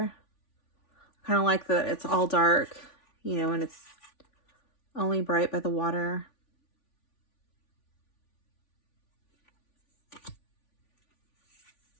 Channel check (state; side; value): late; right; 3.5 ms